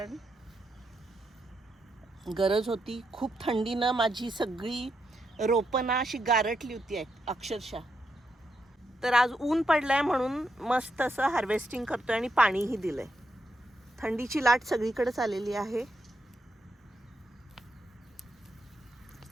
गरज होती. खूप थंडीनं माझी सगळी रोपं अशी गारटली होती अक्षरशः. तर आज ऊन पडलंय म्हणून मस्त असं हार्वेस्टिंग करतोय आणि पाणीही दिलंय. थंडीची लाट सगळीकडेच आलेली आहे.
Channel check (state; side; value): normal; both; correlation 0.82